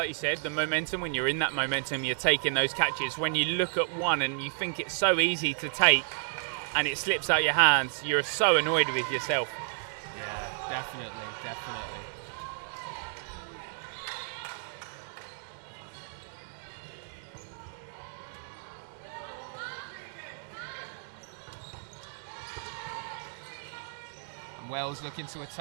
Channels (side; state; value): left; silent; digital silence